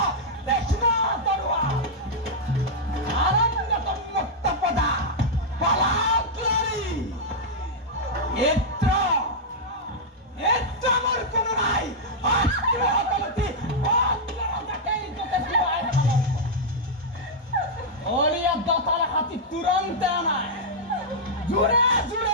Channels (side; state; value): both; normal; correlation -0.05